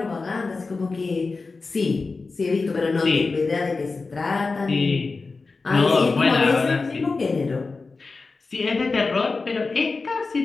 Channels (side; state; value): right; quieter; 4.0 dB